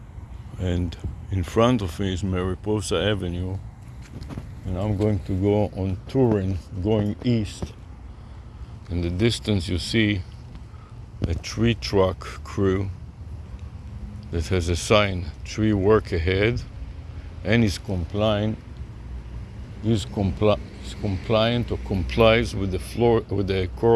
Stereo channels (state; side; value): identical; both; correlation 1.00